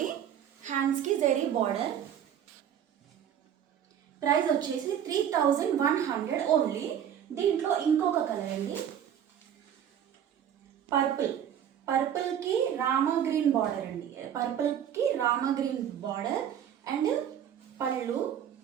హ్యాండ్స్కి జరీ బార్డర్. ప్రైస్ వచ్చేసి 3100 ఓన్లీ. దీంట్లో ఇంకొక కలర్ అండి, పర్పుల్కి రామా గ్రీన్ బార్డర్ అండి. పర్పుల్కి రామా గ్రీన్ బార్డర్ అండ్ పళ్ళు,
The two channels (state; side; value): quieter; left; 9.5 dB